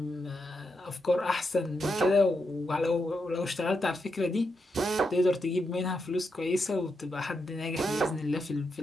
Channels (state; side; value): normal; both; correlation 0.84